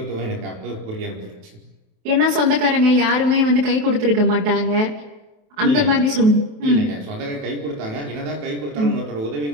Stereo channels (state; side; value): late; left; 28 ms